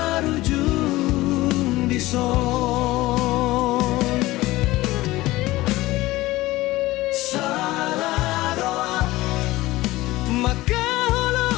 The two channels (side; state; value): right; quieter; 18.4 dB